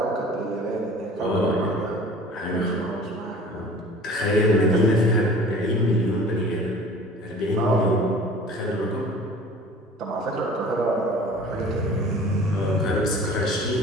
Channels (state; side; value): normal; both; correlation 0.45